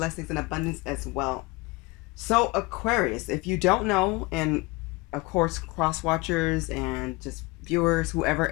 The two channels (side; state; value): right; quieter; 24.4 dB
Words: and abundance as well. So Aquarius, if you don't know, and of course cross watchers and just viewers, whoever,